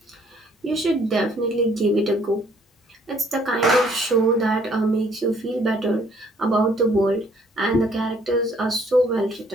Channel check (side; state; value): both; normal; correlation 0.63